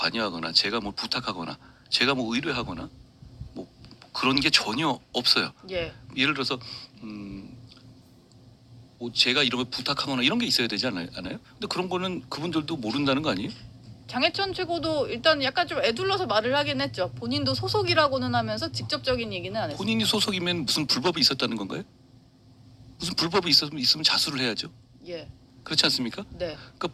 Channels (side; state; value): both; identical; correlation 1.00